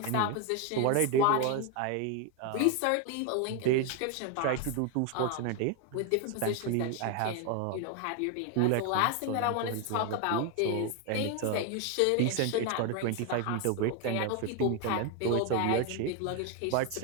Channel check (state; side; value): different; both; correlation 0.01